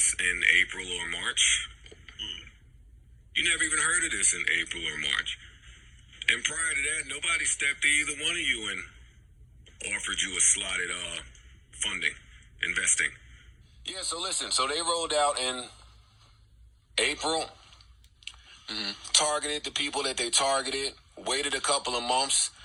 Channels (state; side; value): identical; both; correlation 1.00